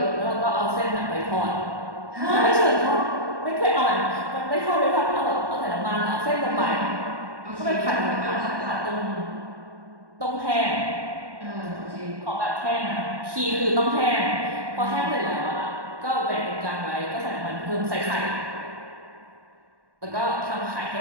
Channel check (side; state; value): left; late; 1.1 ms